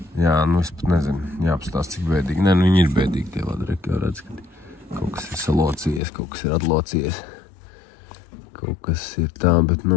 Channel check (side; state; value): right; drops out; at 6.0 s